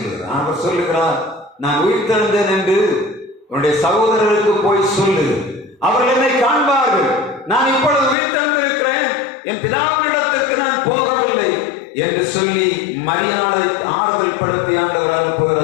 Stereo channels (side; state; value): right; drops out; at 8.2 s